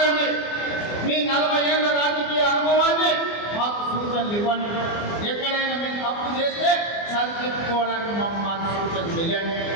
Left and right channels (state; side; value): late; right; 24 ms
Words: మీ 40 ఏళ్ల రాజకీయ అనుభవాన్ని మాకు సూచనలు ఇవ్వండి, ఎక్కడైనా మేము తప్పు చేస్తే సరిదిద్దుకోవడానికి మాకు సూచన చేయండి.